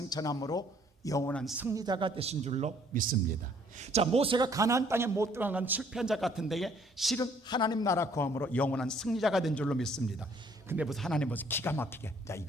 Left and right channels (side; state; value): both; normal; correlation 0.62